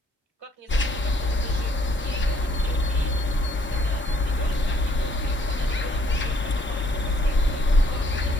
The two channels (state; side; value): normal; both; correlation 0.65